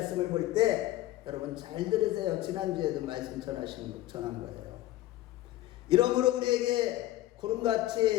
볼 때 여러분 잘 들으세요. 지난주에도 말씀 전한 거예요. 이러므로 우리에게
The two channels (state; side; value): quieter; right; 15.4 dB